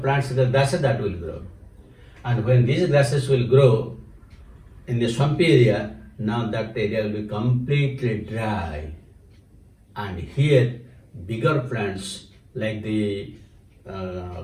plants, the grasses that will grow. And when these grasses will grow in the swampy area, now that area will be completely dry. And here, bigger plants like the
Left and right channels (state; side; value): identical; both; correlation 1.00